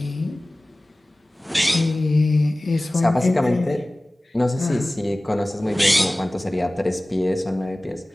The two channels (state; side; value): normal; both; correlation 0.98